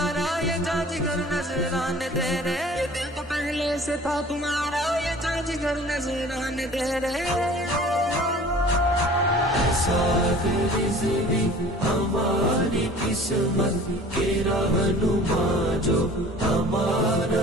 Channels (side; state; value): both; normal; correlation 0.46